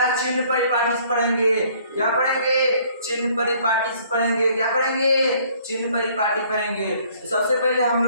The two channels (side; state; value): both; inverted; correlation -0.60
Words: चिन्ह परिपाटी पढ़ेंगे। क्या पढ़ेंगे? चिन्ह परिपाटी पढ़ेंगे। क्या पढ़ेंगे? चिन्ह परिपाटी पढ़ेंगे। तो सबसे पहले हम